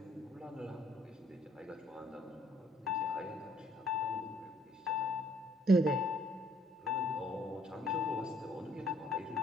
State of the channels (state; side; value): normal; both; correlation 0.64